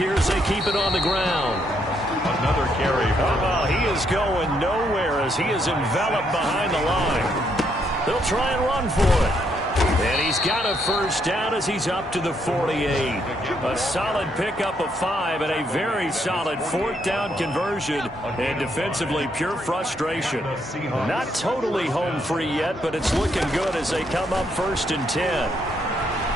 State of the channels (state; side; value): normal; both; correlation 0.74